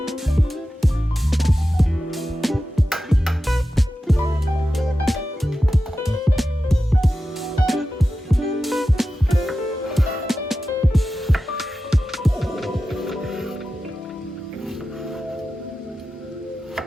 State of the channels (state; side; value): normal; both; correlation 0.93